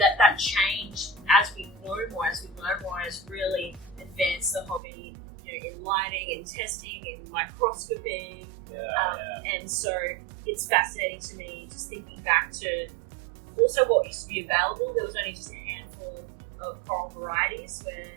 changed as we know more, as we learn more, has really advanced the hobby. In lighting, in testing, in microscopy. And so it's fascinating to me, just thinking back to also what used to be available. There was only just a handful of coral varieties,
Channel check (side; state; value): left; drops out; at 4.8 s